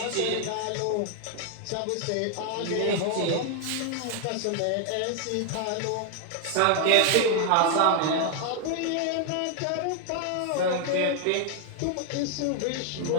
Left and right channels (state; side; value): different; both; correlation 0.00